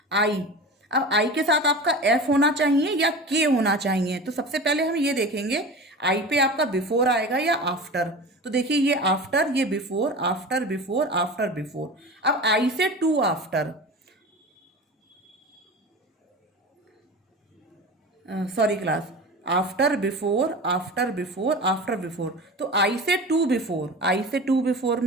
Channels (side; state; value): both; normal; correlation 0.32